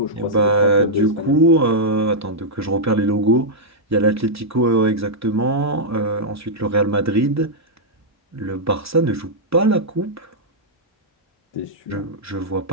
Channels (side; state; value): both; normal; correlation -0.07